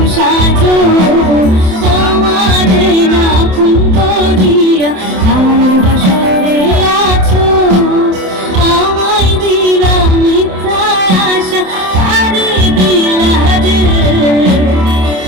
সাজো আমারে না খুন করিয়া, তার বাসরে আছো আমায় দিলা মিথ্যা আশা, তারে দিলা রে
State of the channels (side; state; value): left; late; 27 ms